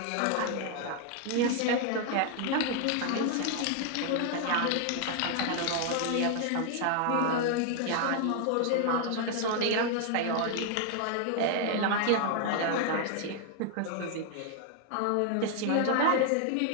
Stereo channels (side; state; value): both; different; correlation 0.00